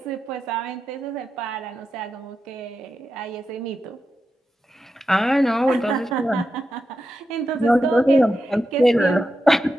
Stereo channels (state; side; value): normal; both; correlation 0.89